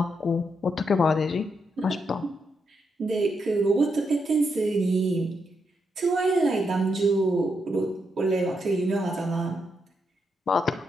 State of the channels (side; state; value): both; normal; correlation 0.81